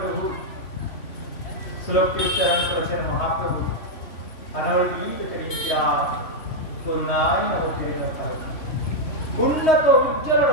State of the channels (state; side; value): late; right; 3.0 ms